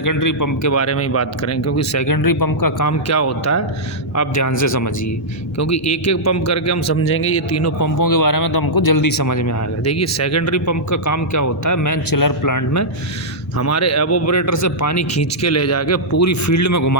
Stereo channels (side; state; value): both; normal; correlation -0.10